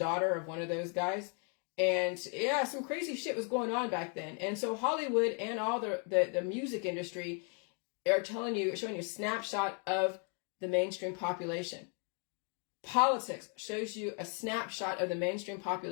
of one of those guys. And yeah, some crazy shit was going on back then. And so Hollywood and all the music industry are showing you a snapshot of the mainstream population. Politics shows you a snapshot of the mainstream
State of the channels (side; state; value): right; quieter; 39.5 dB